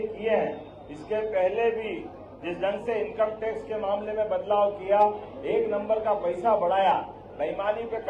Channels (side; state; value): both; identical; correlation 1.00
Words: किए हैं। इसके पहले भी जिस ढंग से इनकम टैक्स के मामले में बदलाव किया, एक नंबर का पैसा बढ़ाया, बेईमानी पे